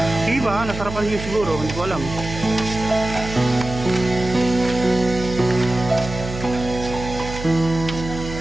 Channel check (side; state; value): right; noise; hum, 9 dB below the sound